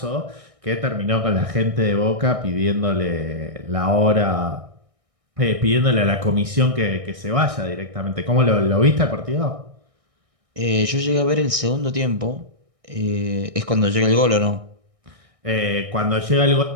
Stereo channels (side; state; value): left; late; 1.6 ms